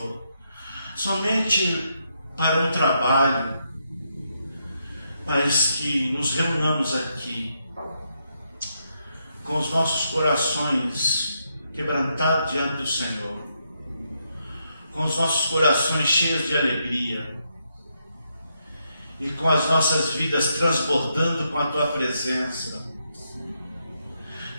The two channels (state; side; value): inverted; both; correlation -0.80